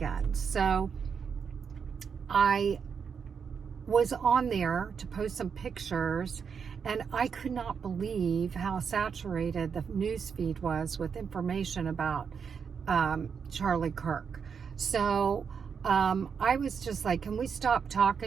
So I was on there to post some pictures, and I could not believe how saturated the news feed was with information about Charlie Kirk. So I was just like, can we stop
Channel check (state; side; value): quieter; left; 6.5 dB